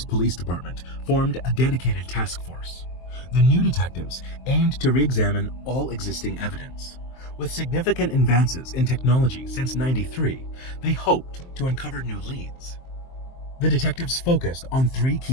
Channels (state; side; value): late; right; 23 ms